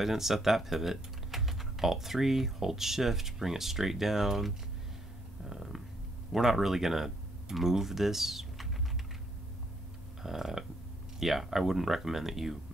didn't set that pivot. Alt 3, hold shift, bring it straight down. We're not really going to move this. Yeah, I wouldn't recommend that you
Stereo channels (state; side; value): normal; both; correlation 0.72